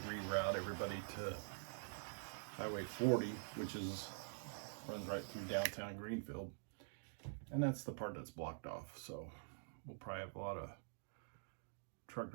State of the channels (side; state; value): left; silent; digital silence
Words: reroute everybody to Highway 40, which runs right through downtown Greenfield, and that's the part that's blocked off. So we'll probably have a lot of truck